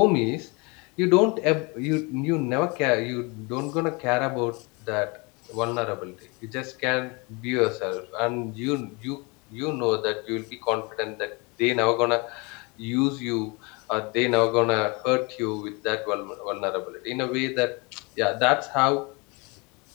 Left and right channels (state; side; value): quieter; right; 29.0 dB